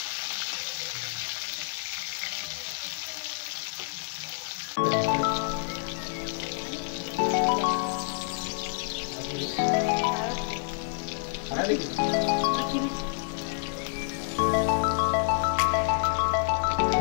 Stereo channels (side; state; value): right; silent; digital silence